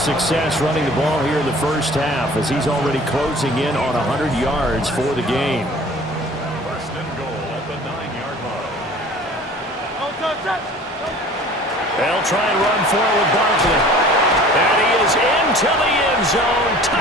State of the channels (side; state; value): both; normal; correlation 0.46